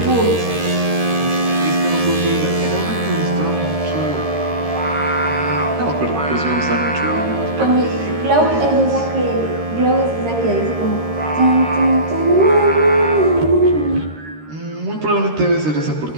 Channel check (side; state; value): left; late; 13 ms